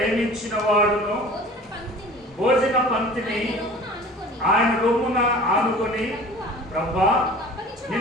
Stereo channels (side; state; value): both; normal; correlation 0.43